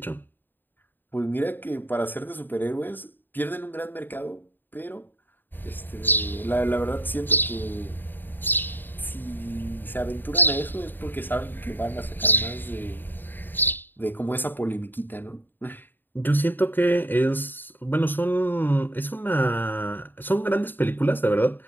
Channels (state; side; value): late; right; 0.093 ms